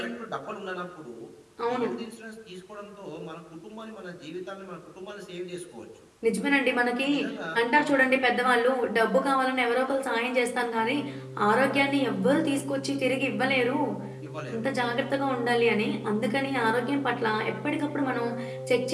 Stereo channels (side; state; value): both; identical; correlation 1.00